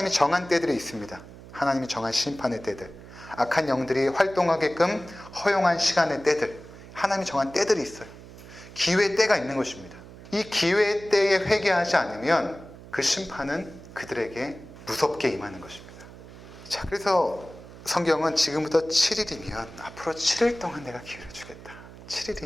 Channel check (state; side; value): noise; right; hum, 17 dB below the sound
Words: 정한 때들이 있습니다. 하나님이 정한 심판의 때들, 악한 영들이 활동하게끔 허용한 시간의 때들, 하나님이 정한 때들이 있어요. 기회의 때가 있는 것입니다. 이 기회의 때에 회개하지 않으면 그 심판은 그들에게 무섭게 임하는 것입니다. 자, 그래서 성경은 지금부터 7일이면 앞으로 7일 동안 내가 기회를 주겠다.